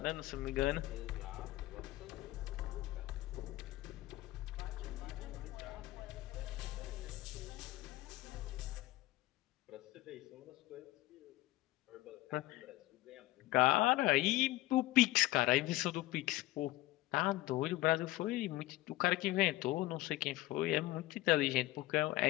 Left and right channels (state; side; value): quieter; right; 17.7 dB